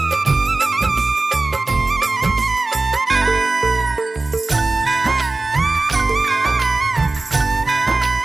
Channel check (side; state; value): left; quieter; 3.3 dB